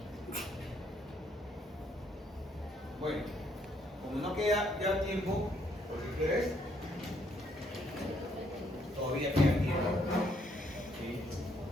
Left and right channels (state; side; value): normal; both; correlation 0.70